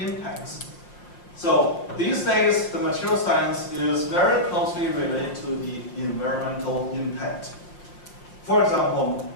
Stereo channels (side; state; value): right; late; 5.6 ms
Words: So these days, the material science is very closely related to the environmental impact. For example,